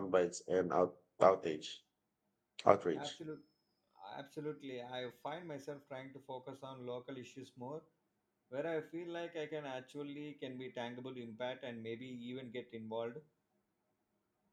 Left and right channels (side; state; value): both; identical; correlation 1.00